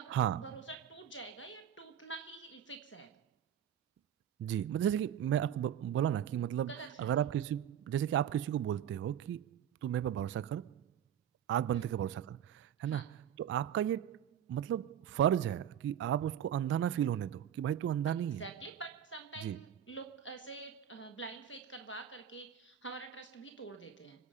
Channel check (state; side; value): quieter; left; 9.9 dB